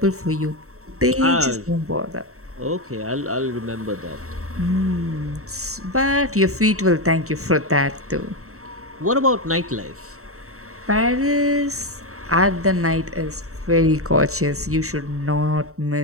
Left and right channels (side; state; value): left; late; 0.64 ms